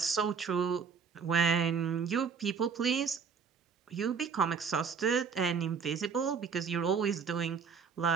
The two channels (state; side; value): quieter; left; 6.2 dB